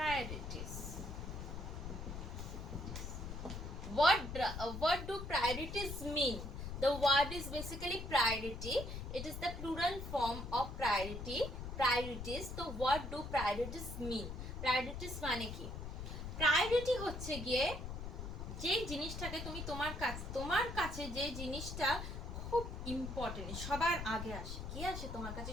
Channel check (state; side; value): noise; left; rumble, 7 dB below the sound